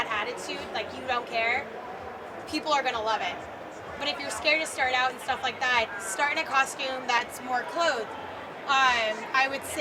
attitude, like you don't care, people are going to love it. But if you're scared to start out and stuff like that, start in a costume that's more clothed. I would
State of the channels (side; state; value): both; identical; correlation 1.00